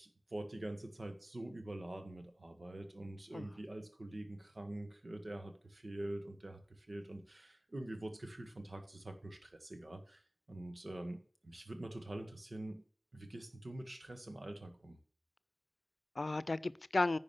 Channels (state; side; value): normal; both; correlation 0.97